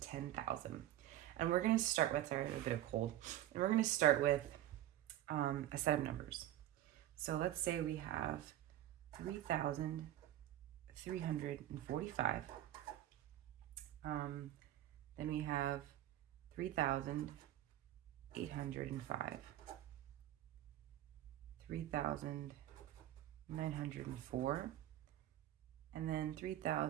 And we're going to start with, sorry, a bit of cold. And we're going to start with a set of numbers. So let's say we have 3,345. Then we have 3,805. 3,904. And then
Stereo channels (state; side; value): quieter; left; 13.2 dB